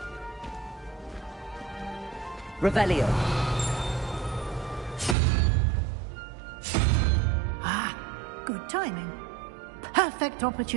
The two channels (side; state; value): left; drops out; at 5.2 s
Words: Revelio. Ah, good timing. Perfect